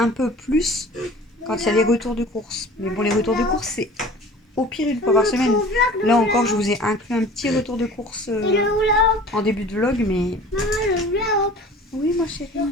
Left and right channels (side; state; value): both; normal; correlation 0.43